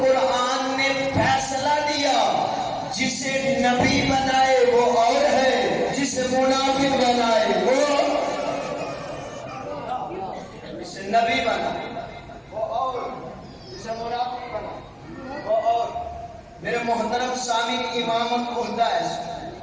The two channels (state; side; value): identical; both; correlation 1.00